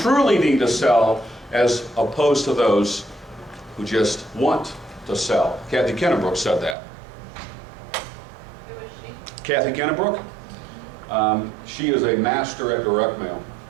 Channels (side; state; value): left; drops out; at 6.8 s